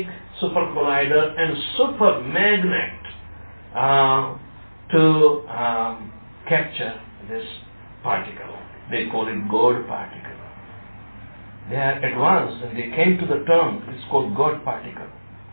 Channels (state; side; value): inverted; both; correlation -1.00